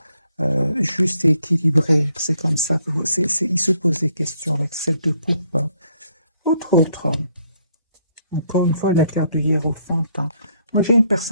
juste et équilibrée? C'est comme ça que il se pose des questions avec celle de coupe, hein. Autre, encore une fois, la carte du hiérophant, hein. Moi, j'ai une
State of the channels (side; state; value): both; inverted; correlation -0.70